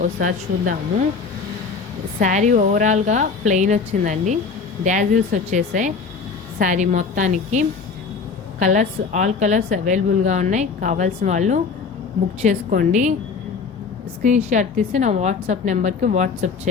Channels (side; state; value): right; quieter; 5.0 dB